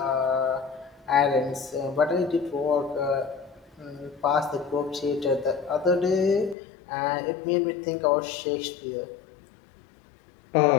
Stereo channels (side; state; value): right; drops out; at 6.6 s